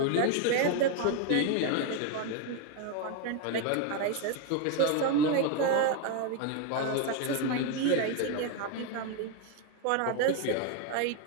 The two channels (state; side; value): different; both; correlation 0.01